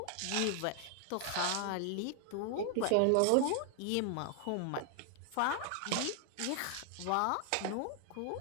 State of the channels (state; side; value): different; both; correlation 0.00